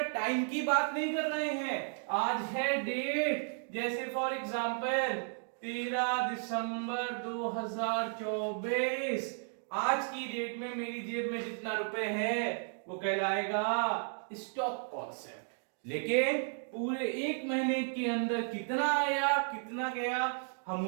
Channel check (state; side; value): silent; left; 55 dB below the other